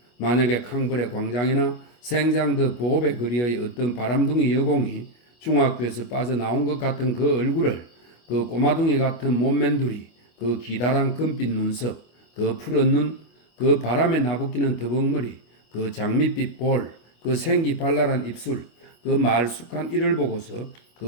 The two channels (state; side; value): late; right; 25 ms